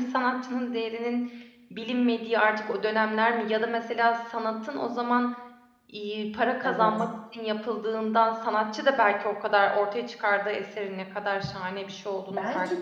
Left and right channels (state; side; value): identical; both; correlation 1.00